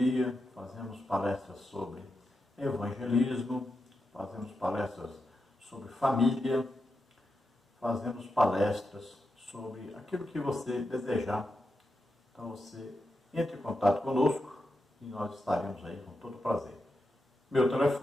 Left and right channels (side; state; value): both; normal; correlation 0.88